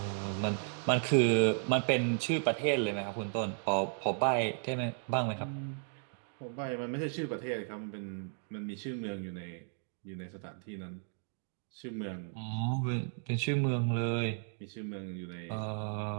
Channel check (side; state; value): left; silent; 55 dB below the other